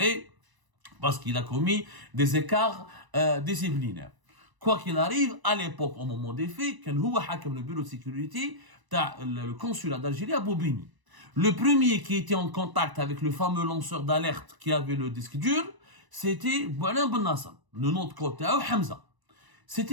parce qu'il a commis des écarts disciplinaires. Quoi qu'il arrive, à l'époque, au moment des faits, quand il a le bureau de sécurité, le consulat d'Algérie à Bobigny. Le premier qui était en contact avec le fameux lanceur d'alerte qui avait le disque dur, c'était Boualem Ben Nasser. Le nom de côté, Hamza.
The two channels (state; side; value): late; left; 1.0 ms